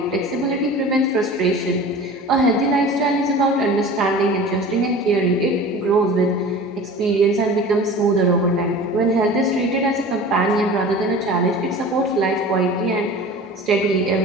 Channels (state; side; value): normal; both; correlation 0.38